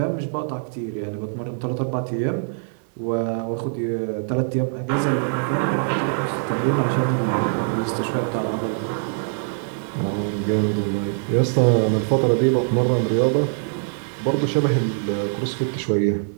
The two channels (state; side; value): silent; left; digital silence